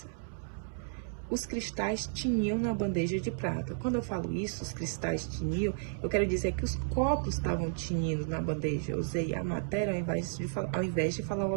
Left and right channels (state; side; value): silent; left; 56 dB below the other